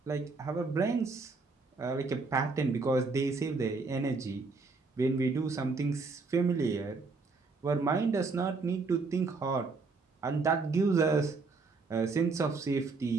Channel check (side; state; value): left; quieter; 4.1 dB